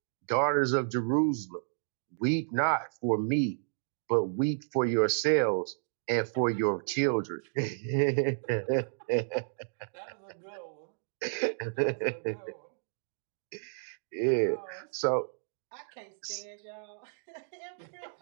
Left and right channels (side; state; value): left; silent; digital silence